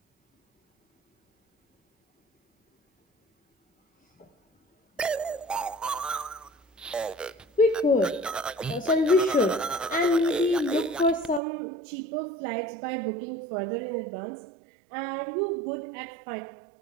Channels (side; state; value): left; drops out; at 11.4 s